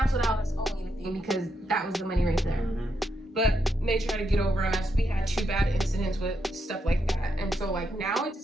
out as owing anything because that was the money right there. But they tried to get over on us. We had 2 bad incidents with stuff like that, and so like now it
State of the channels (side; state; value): both; normal; correlation 0.81